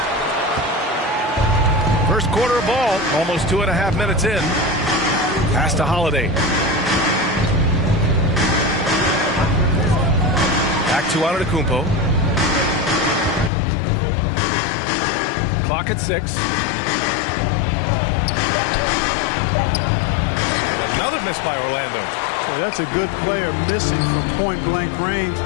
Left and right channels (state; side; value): drops out; right; at 13.5 s